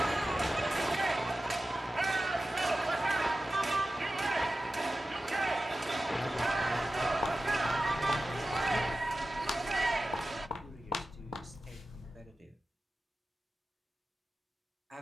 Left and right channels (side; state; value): both; normal; correlation 0.94